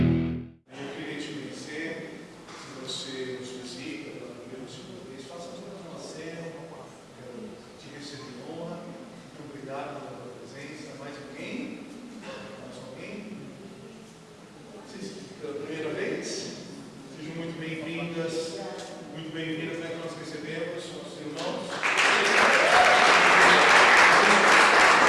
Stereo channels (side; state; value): both; identical; correlation 1.00